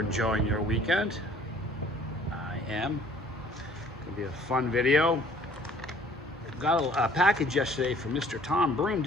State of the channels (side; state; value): both; normal; correlation 0.55